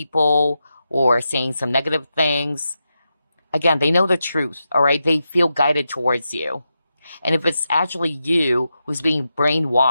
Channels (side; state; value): both; inverted; correlation -0.88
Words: or saying some negative things, again, they know the truth, all right? They feel guided towards you. And if it's actually you who's being